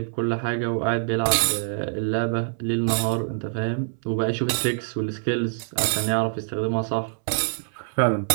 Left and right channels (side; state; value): left; silent; 62 dB below the other